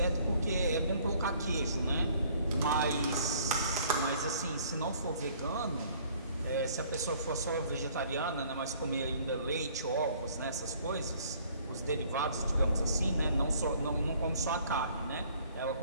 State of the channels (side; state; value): both; inverted; correlation -0.58